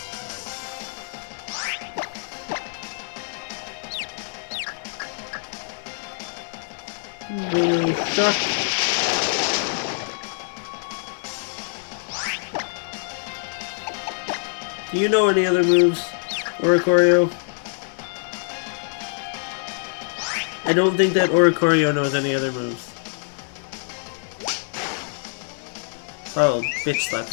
Shock. Do you know any other moves? Oricorio? I don't think that Oricorio knows any other moves. Oh, bitch slap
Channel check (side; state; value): right; silent; 62 dB below the other